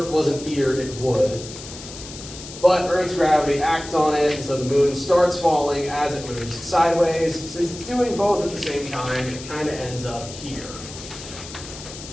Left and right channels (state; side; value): noise; left; hiss, 13 dB below the sound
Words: wasn't here, it would. But Earth's gravity acts on it, and so the moon starts falling as it moves sideways. Since it's doing both at the same time, it kind of ends up here.